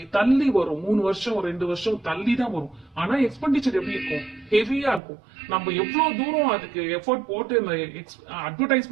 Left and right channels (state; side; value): drops out; left; at 5.0 s